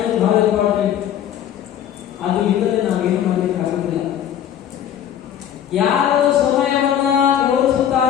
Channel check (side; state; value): right; quieter; 10.1 dB